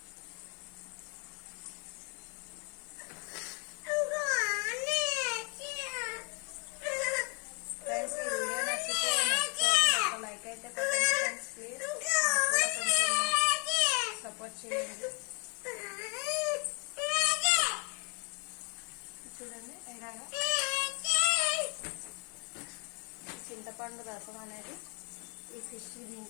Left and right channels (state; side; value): quieter; right; 35.9 dB